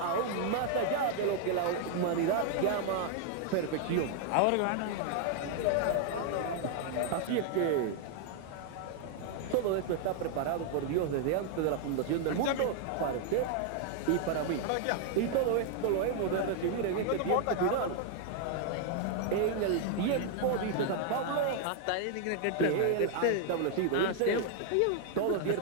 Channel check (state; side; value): different; both; correlation 0.00